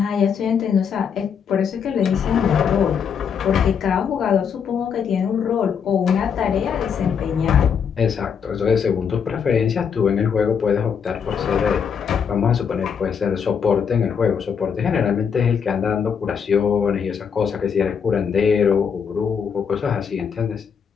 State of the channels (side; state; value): right; quieter; 7.0 dB